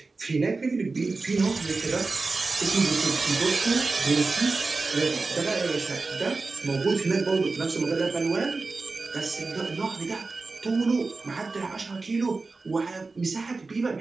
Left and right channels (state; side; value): quieter; left; 3.8 dB